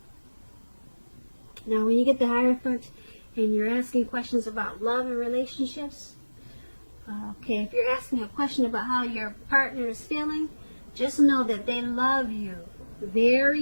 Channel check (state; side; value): inverted; both; correlation -1.00